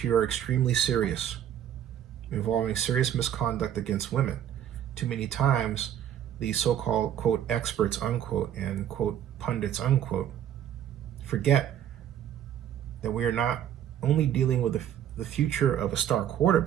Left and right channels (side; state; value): left; quieter; 10.3 dB